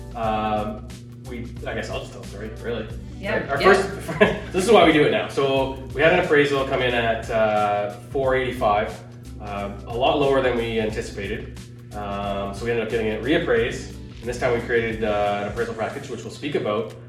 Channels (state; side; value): identical; both; correlation 1.00